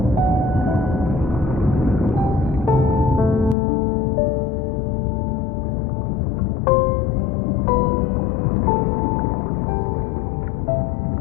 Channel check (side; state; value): right; drops out; at 3.6 s